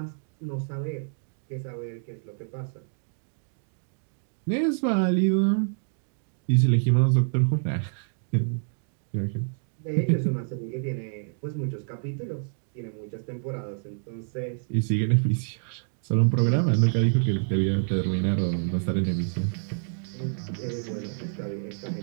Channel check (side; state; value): left; silent; digital silence